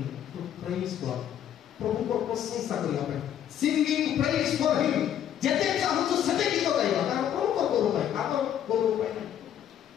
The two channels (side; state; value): right; quieter; 10.1 dB